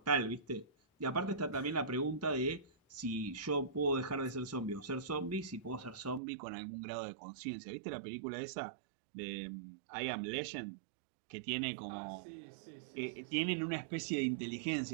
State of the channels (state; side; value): drops out; left; at 6.2 s